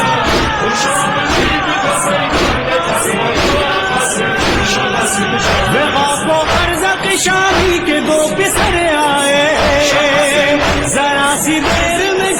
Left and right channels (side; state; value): both; identical; correlation 1.00